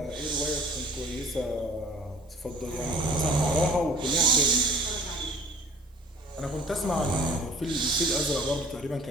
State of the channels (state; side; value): normal; both; correlation 0.48